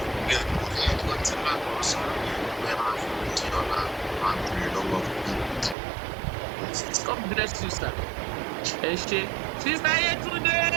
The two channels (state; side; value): drops out; left; at 5.8 s